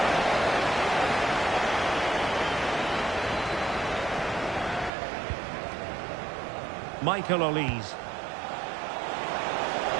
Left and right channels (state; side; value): drops out; left; at 4.9 s